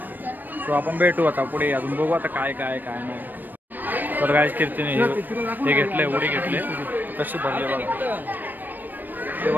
तो आपण भेटू आता पुढे. अजून बघू आता काय काय काय नाही. तर काय कीर्तीने हे घेतलंय. उडी घेतले. कशी भरले बघा. ते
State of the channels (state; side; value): late; left; 0.090 ms